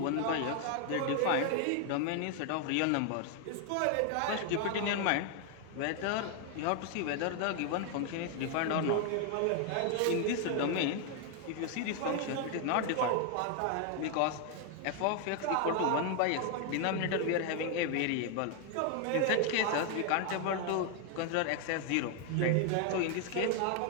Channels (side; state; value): both; different; correlation 0.00